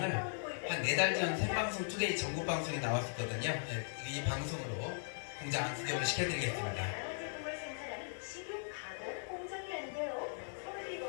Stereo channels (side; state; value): right; silent; digital silence